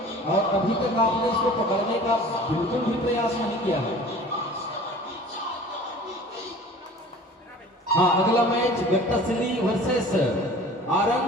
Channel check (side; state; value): both; normal; correlation 0.44